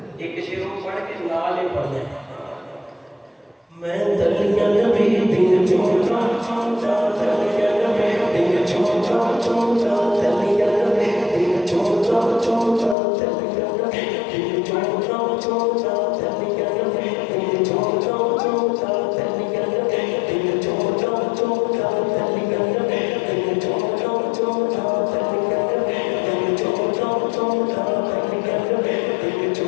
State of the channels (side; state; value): right; drops out; at 13.0 s